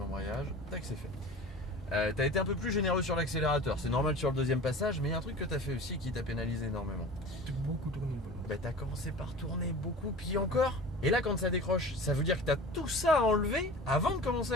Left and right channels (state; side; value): normal; both; correlation 0.38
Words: tac c'est fait. Tu as été un peu plus généreux sur l'accélérateur, c'est normal sur le deuxième passage, mais il y a un truc que tu as fait aussi qui t'a pénalisé énormément. J'ai beaucoup tourné le volant. Bah tu as commencé par tourner beaucoup, puis encore. Et là quand ça décroche, ça veut dire que tu as tout ça à enlever avant de commencer